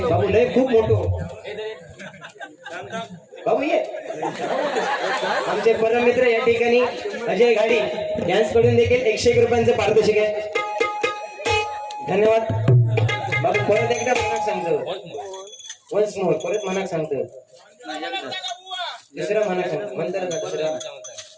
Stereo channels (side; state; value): both; identical; correlation 1.00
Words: बाबू लय खूप मोठं बाबू ये. आमचे परम मित्र या ठिकाणी अजय गाडी यांच्याकडून देखील 101 रुपयांचं पारितोषिक आहे. धन्यवाद बाबू. परत एकदा मनाक सांगतो वन्स मोर परत मनाक सांगतो दुसरा मनाक सांगतो म्हणतात का दुसरा